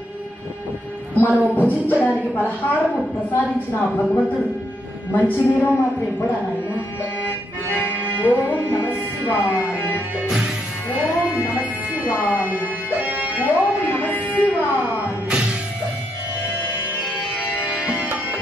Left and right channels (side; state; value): both; normal; correlation 0.78